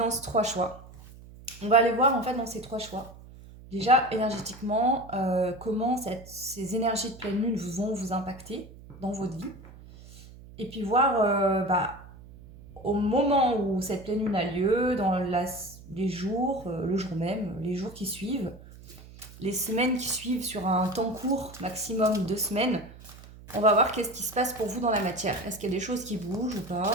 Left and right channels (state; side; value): noise; right; hum, 19 dB below the sound